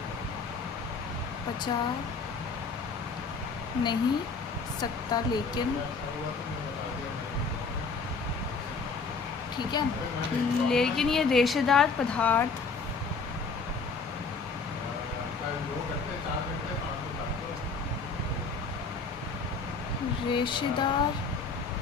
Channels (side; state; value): right; quieter; 4.5 dB